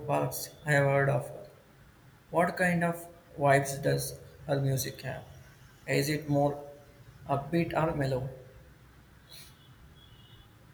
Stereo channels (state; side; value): identical; both; correlation 1.00